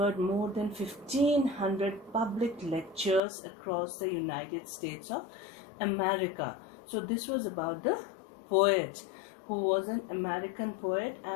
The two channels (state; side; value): drops out; right; at 3.2 s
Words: more than 1500 public lectures across the United States of America. So this was about the poet who was an American poet